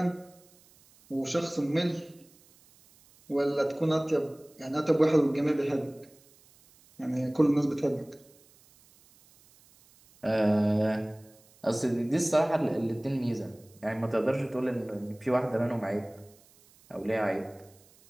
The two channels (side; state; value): right; noise; hiss, 28 dB below the sound